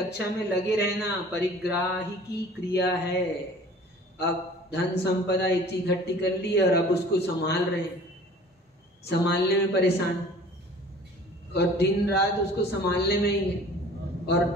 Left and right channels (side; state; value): both; normal; correlation 0.47